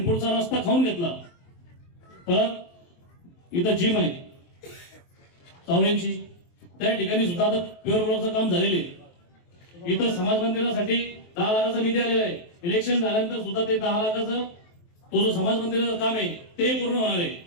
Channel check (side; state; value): right; late; 23 ms